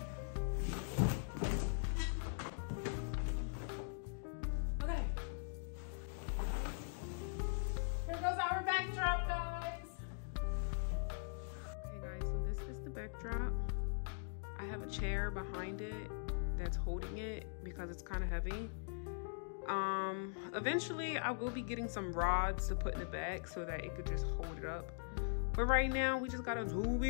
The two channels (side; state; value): right; silent; digital silence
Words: Okay. Here goes our backdrop, guys. Okay, guys, so this is the backdrop. I have a chair behind it that's holding it because it's kind of heavy. Eventually I will be getting some rods to put in the back so that it could just hold it up. But right now we just gotta do what